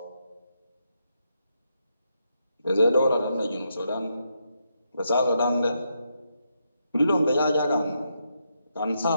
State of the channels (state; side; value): inverted; both; correlation -0.81